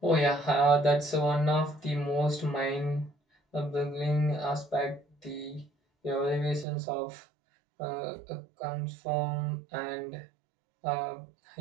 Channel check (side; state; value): left; drops out; at 6.7 s